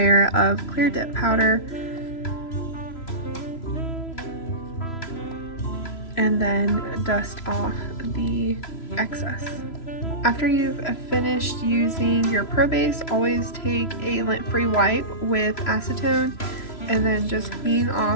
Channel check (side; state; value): right; late; 3.0 ms